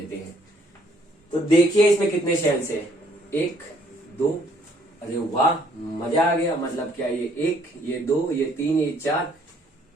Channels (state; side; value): normal; both; correlation 0.64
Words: हैं। तो देखिए इसमें कितने शेल्स है, 1 2। अरे वाह मजा आ गया। मतलब क्या ये 1, ये 2, ये 3, ये 4।